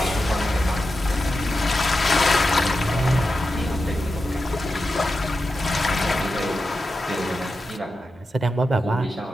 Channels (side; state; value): both; normal; correlation 0.90